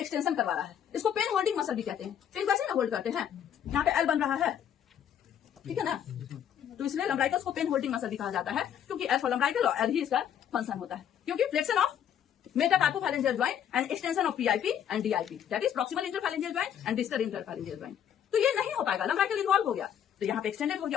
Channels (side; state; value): right; quieter; 9.4 dB